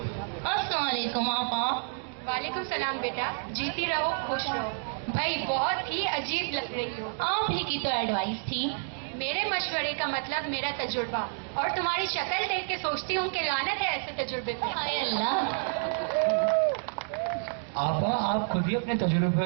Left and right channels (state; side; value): silent; left; digital silence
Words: अस्सलामुअलैकुम आपा। वालेकुम सलाम बेटा, जीती रहो खुश रहो। भाई बहुत ही अजीब लग रही हो। आप ही की तो एडवाइस थी। मेरे मशवरे का मतलब मेरा तजुर्बा, और तुम्हारी शक्ल देख के सोचती हूँ कि लानत है ऐसे तजुर्बे पे। हाय अल्लाह। आपा, आप खुद ही अपने